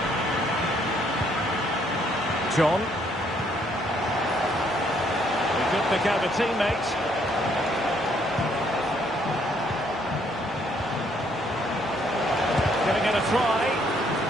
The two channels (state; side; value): normal; both; correlation 0.68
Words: John. He could pick out a teammate. Giving it a try.